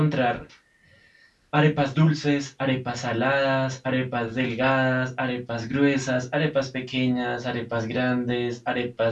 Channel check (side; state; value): both; identical; correlation 1.00